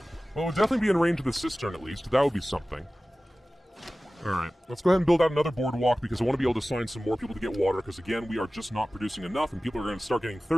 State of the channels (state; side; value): normal; both; correlation 0.97